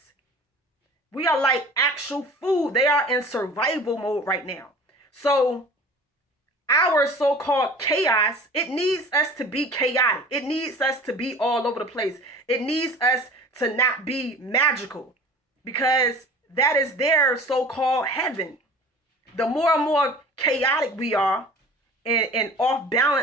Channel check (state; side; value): normal; both; correlation 0.43